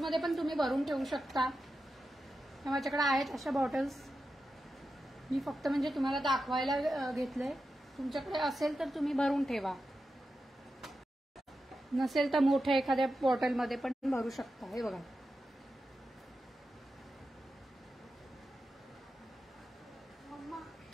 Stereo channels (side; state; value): both; normal; correlation 0.90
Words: पण तुम्ही भरून ठेवू शकता. माझ्याकडे आहेत अशा बॉटल्स. मी फक्त म्हणजे तुम्हाला दाखवायला घेतलंय. तुमच्याकडे असेल तर तुम्ही भरून ठेवा, नसेल तर मोठ्या एखाद्या बॉटलमध्ये पण भरू शकता. हे बघा,